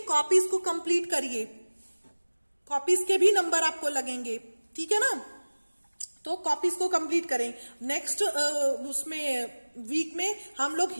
Copies को कंप्लीट करिए, कॉपीज के भी नंबर आपको लगेंगे, ठीक है ना। तो कॉपीज को कंप्लीट करें। नेक्स्ट उसमें वीक में हम लोग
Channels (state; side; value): inverted; both; correlation -1.00